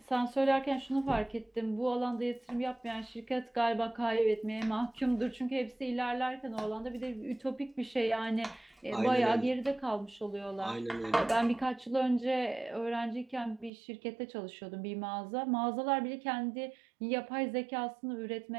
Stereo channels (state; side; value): drops out; left; at 13.7 s